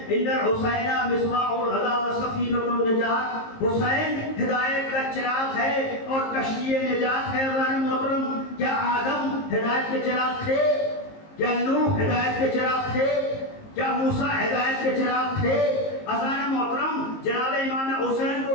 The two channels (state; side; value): late; right; 19 ms